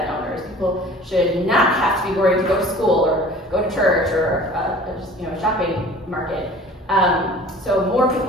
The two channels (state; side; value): normal; both; correlation 0.46